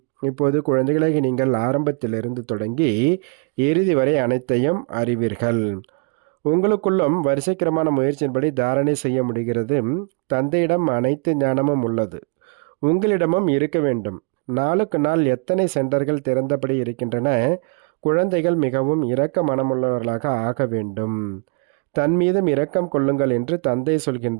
இப்போது குழந்தைகளாகி நீங்கள் ஆரம்பத்திலிருந்து தொடங்கி இறுதி வரை அனைத்தையும் அறிவீர்கள். உங்களுக்குள்ளும் வரிசைக்கிரமான முயற்சியின்படி தாரணை செய்ய முடிகிறது. தந்தையிடம் அனைத்து ஞானமும் உள்ளது, உங்களிடமும் இருக்க வேண்டும். நாளுக்கு நாள் எத்தனை சென்டர்கள் திறந்தபடி இருக்கின்றன. குழந்தைகள் மிகவும் இரக்க மனமுள்ளவர்களாக ஆக வேண்டும். தன் மீதும் இரக்கம் கொள்ளுங்கள் என்று தந்தை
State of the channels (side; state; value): left; quieter; 35.8 dB